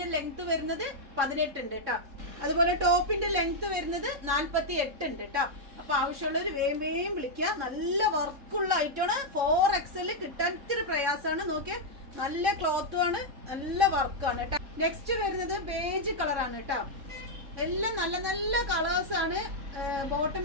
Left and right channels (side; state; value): left; late; 3.6 ms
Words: ലെങ്ത് വരുന്നത് 18 ഉണ്ട് കേട്ടോ. അതുപോലെ ടോപ്പിന്റെ ലെങ്ത് വരുന്നത് 48 ഉണ്ട് കേട്ടോ. അപ്പൊ ആവശ്യമുള്ളൊരു വേഗം വിളിക്കുക. നല്ല വർക്കുള്ള ഐറ്റമാണ്. 4XL കിട്ടാൻ ഇത്തിരി പ്രയാസമാണ്. നോക്കിയാൽ നല്ല ക്ലോത്തും ആണ്, നല്ല വർക്കാണ് കേട്ടോ. നെക്സ്റ്റ് വരുന്നത് ബേജ് കളറാണ് കേട്ടോ. എല്ലാം നല്ല നല്ല കളേഴ്സ് ആണ്. ബോട്ടം